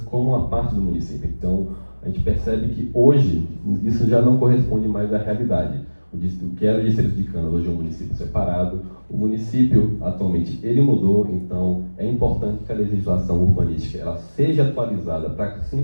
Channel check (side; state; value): both; inverted; correlation -1.00